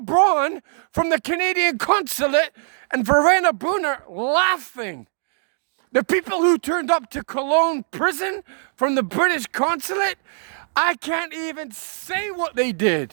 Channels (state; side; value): silent; left; digital silence